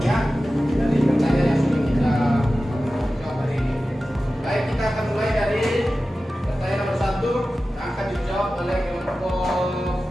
ya, dari pertanyaan yang sudah kita jawab hari ini. Baik, kita akan mulai dari pertanyaan nomor 1 yang akan dijawab oleh kelompok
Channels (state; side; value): normal; both; correlation 0.95